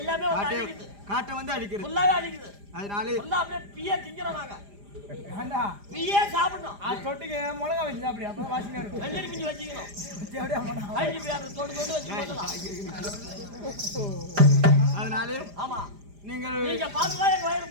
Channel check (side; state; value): left; late; 4.9 ms